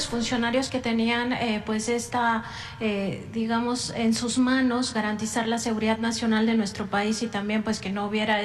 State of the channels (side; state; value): both; identical; correlation 1.00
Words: que tenían pues digamos, en sus manos garantizar la seguridad nacional de nuestro país y también pues que no hubiera